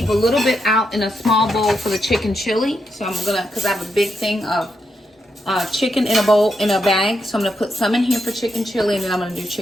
a little bit out in a small bowl for the chicken chili. So I'm gonna, cause I have a big thing of chicken in a bowl, in a bag. So I'm gonna put some in here for chicken chili, and then I'm gonna do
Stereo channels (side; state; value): both; normal; correlation 0.83